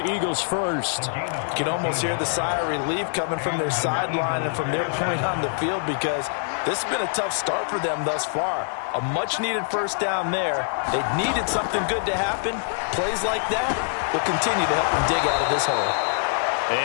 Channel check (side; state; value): right; silent; digital silence